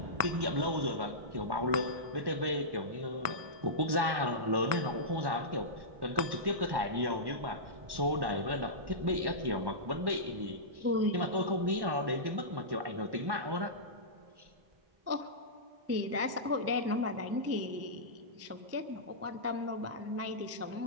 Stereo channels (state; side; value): late; left; 1.1 ms